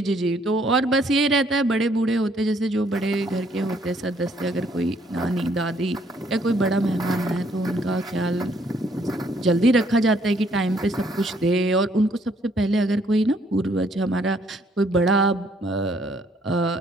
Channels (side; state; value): both; normal; correlation 0.66